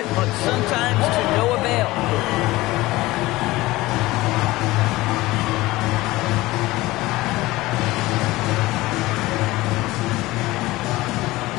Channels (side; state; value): right; quieter; 19.1 dB